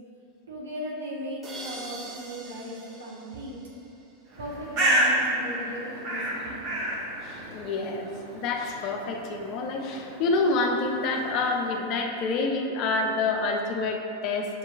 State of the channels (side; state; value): both; normal; correlation 0.05